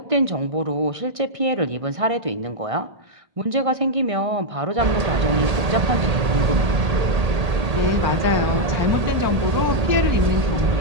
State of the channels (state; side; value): late; left; 1.8 ms